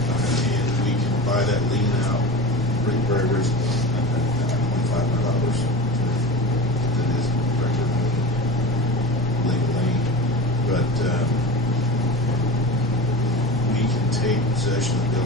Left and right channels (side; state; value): left; noise; rumble, 17 dB below the sound